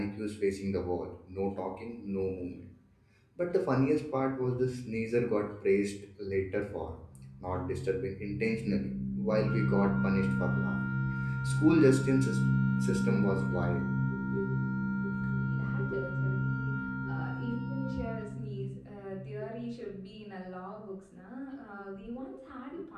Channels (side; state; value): both; identical; correlation 1.00